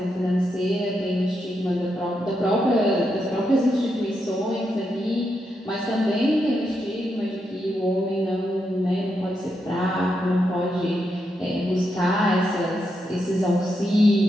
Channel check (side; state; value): both; normal; correlation 0.83